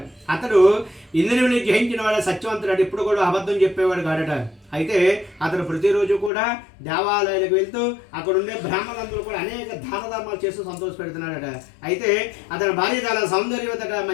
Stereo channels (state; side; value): drops out; right; at 6.3 s